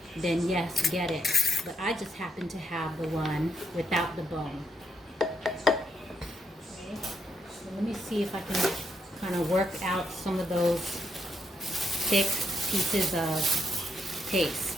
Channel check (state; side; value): normal; both; correlation 0.78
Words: then yes, get it. But I just happen to have the one without the bone. Okay, so let me see if I can kind of work out some of those thick pieces of paste.